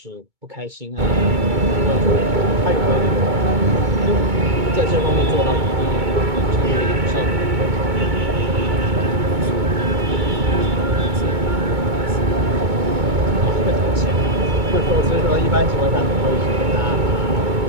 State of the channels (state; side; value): late; left; 2.2 ms